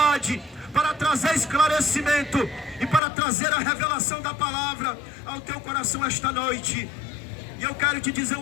para trazer esclarecimento e para trazer a revelação da palavra ao teu coração esta noite. E eu quero te dizer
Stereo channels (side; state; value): right; drops out; at 3.0 s